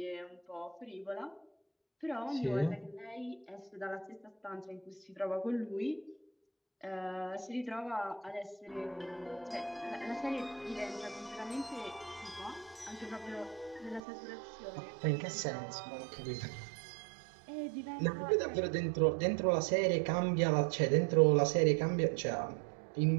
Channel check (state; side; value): drops out; left; at 14.0 s